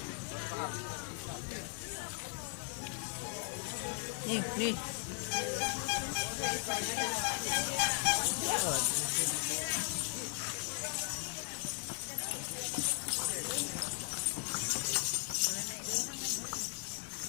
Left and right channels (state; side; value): silent; right; 53 dB below the other